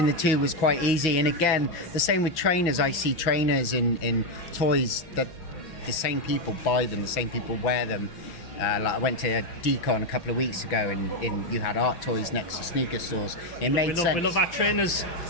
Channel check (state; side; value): late; right; 5.9 ms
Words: the two was quite easy. And again, the same with trainers. I see trainers in toys that the same people buy them, the same people wear them. Like I went to a decon a couple of weeks ago and you had art toys next to sneaker stores. It made sense. We love our trainers.